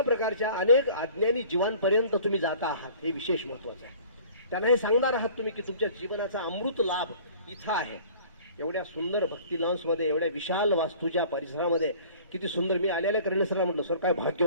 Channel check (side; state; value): both; inverted; correlation -0.48